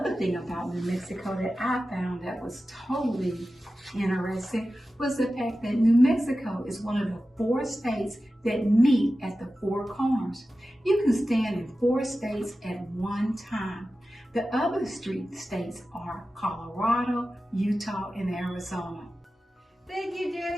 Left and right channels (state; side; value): normal; both; correlation 0.94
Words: thing about New Mexico that I found that was totally interesting was the fact that New Mexico is one of the 4 states that meet at the 4 corners. You can stand in 4 states at one time. The other states are Colorado, Utah, and Arizona. Thank you,